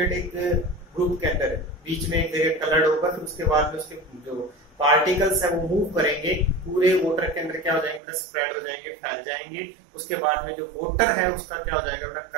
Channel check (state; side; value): drops out; left; at 8.0 s